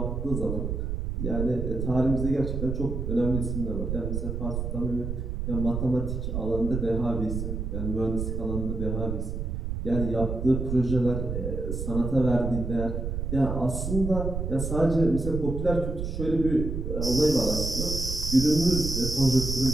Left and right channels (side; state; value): right; noise; rumble, 3 dB below the sound